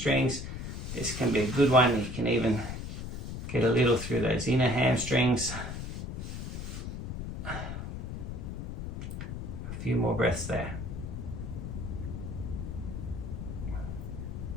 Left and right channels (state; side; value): noise; left; rumble, 6 dB below the sound